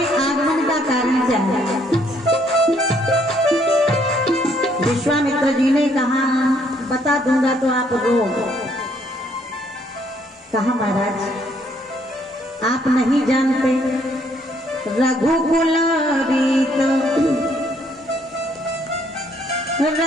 आगमन का कारण क्या है? विश्वामित्र जी ने कहा बता दूंगा तो आप रो। कहा महाराज आप नहीं जानते, रघुकुल रीत,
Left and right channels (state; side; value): normal; both; correlation 0.68